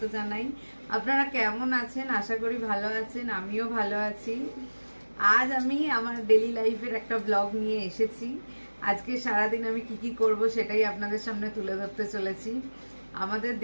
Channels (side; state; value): both; inverted; correlation -1.00